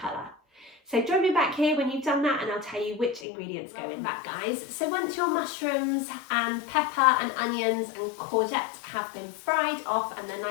So join me back here when you've done that and I'll tell you which ingredients go in that, guys. So once your mushrooms and pepper and onions and courgettes have been fried off and they're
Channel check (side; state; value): right; drops out; at 3.2 s